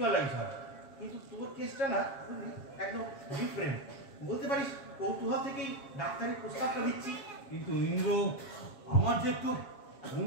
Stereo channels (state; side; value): late; right; 7.2 ms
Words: হয়, কিন্তু তোর কেসটা না বুঝলি একদম ডিফারেন্ট। বলতে পারিস কৌতূহল থেকেই ডাক্তারের প্রস্তাবটা দিচ্ছি। কিন্তু ইন্দ্র আমার যে একটু